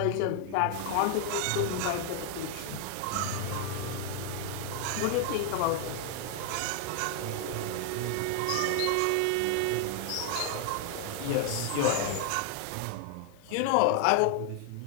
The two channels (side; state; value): both; different; correlation 0.00